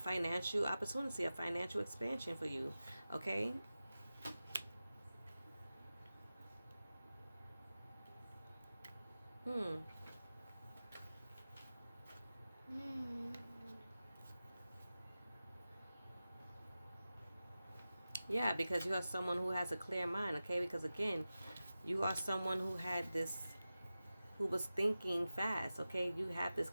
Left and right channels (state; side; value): inverted; both; correlation -0.94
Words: opportunity, a financial expansion for you, okay? Yeah, because you are someone who has a clear mind, okay? Because again, you are someone who had this, who was thinking fast, okay? You have this